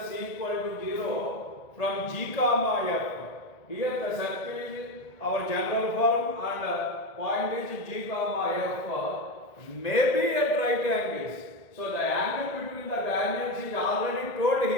c equal to 0 from g comma f. Here the circle is our general form and point is g comma f may be at right angles. So the angle between the tangents is already told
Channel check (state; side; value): late; right; 1.8 ms